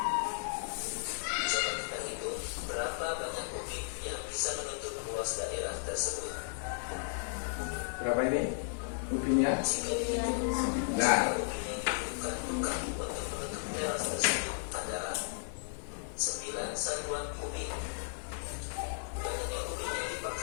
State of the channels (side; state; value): right; silent; digital silence